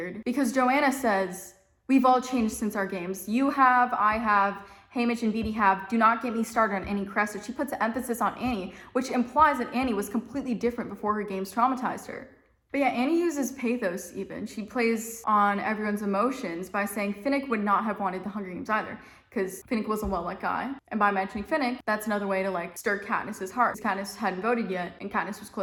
because Joanna says, we've all changed since our games. You have, I have, Haymitch and Beatty have. Do not get me started on Annie Crescent. She puts an emphasis on Annie, which implies that Annie was completely different before her games traumatized her. But yeah, Annie uses pathos even. She plays on everyone's emotions by saying Finnick would not have wanted the Hunger Games either, because Finnick was a well-liked guy. And by mentioning Finnick, that's another way to like stir Katniss's heart. Katniss hadn't voted yet, and Katniss was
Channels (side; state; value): both; identical; correlation 1.00